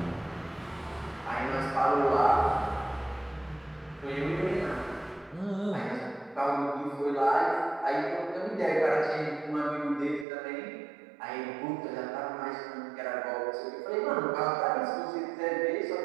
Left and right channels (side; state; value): left; drops out; at 10.2 s